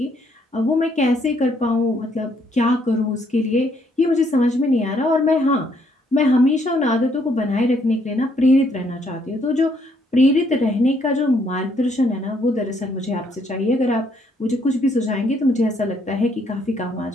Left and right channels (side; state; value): both; normal; correlation 0.70